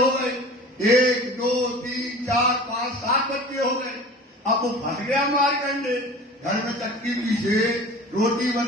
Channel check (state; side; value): normal; both; correlation 0.39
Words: गए, 1 2 3 4 5 7 बच्चे हो गए। अब वो फंस गया मार्कंडेय, घर में चक्की पीसे, रोटी